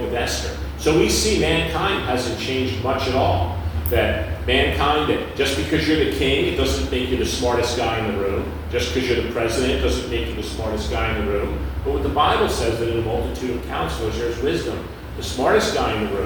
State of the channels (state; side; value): identical; both; correlation 1.00